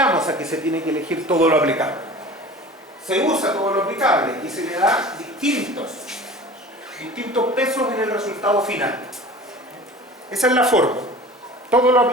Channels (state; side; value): normal; both; correlation 0.40